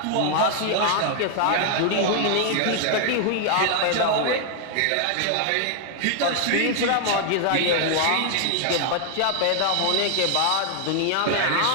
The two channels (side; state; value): both; different; correlation 0.00